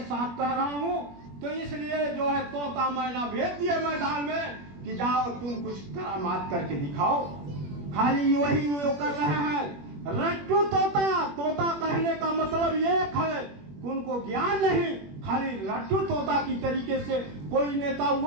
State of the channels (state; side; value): late; left; 21 ms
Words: साथ कह रहा हूं। तो इसलिए जो है तोता मैना भेज दिए मैदान में कि जाओ तुम कुछ करामात करके दिखाओ। खाली वही वो कर रहे हैं, रट्टू तोता कहने का मतलब एक है, उनको ज्ञान नहीं, खाली रट्टू तोता की तरीके से कोई नेता